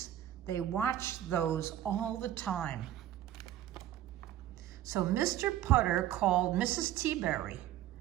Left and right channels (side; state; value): left; quieter; 12.4 dB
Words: They watched those all the time. So Mr. Putter called Mrs. Teaberry.